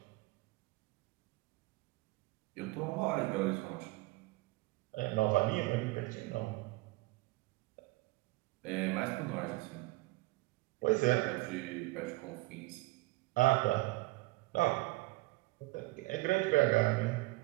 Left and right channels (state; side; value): quieter; left; 21.3 dB